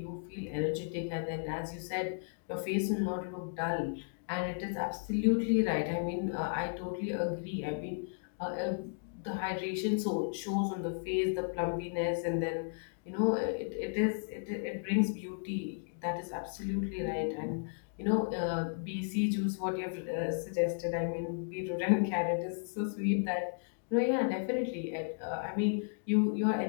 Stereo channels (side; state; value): right; silent; digital silence